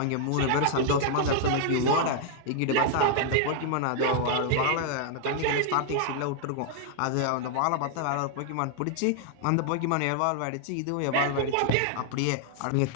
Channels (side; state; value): both; different; correlation 0.00